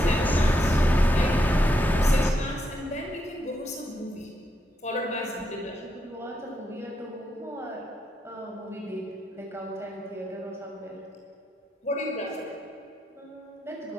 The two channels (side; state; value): both; normal; correlation 0.81